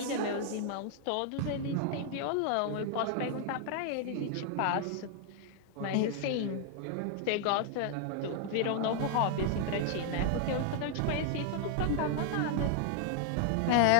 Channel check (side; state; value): both; different; correlation 0.00